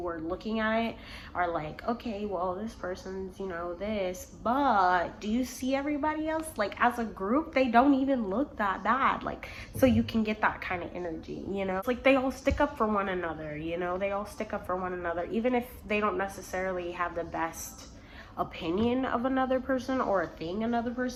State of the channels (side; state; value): both; identical; correlation 1.00